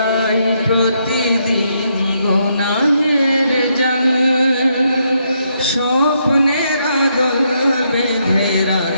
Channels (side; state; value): both; inverted; correlation -0.77